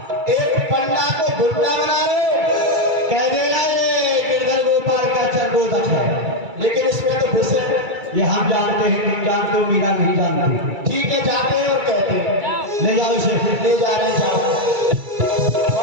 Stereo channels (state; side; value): late; left; 2.3 ms